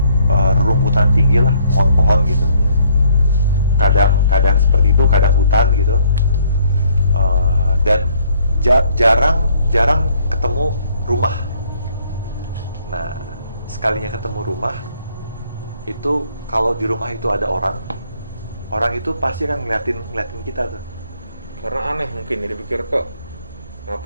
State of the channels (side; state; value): both; inverted; correlation -0.64